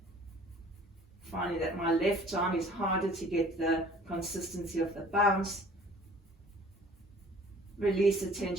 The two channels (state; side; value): normal; both; correlation 0.50